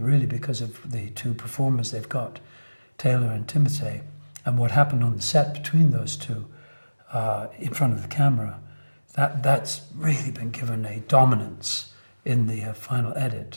because of the 2 performers they've got, Taylor and Timothy, and what happened on the set between those 2 in front of the camera, that's really been given a dominance in the final edit,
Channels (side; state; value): both; inverted; correlation -1.00